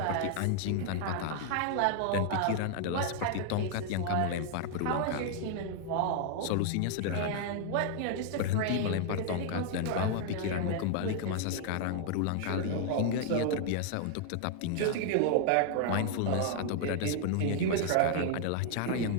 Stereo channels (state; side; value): different; both; correlation 0.00